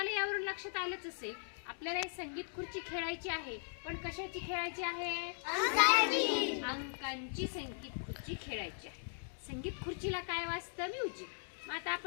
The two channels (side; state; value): right; silent; digital silence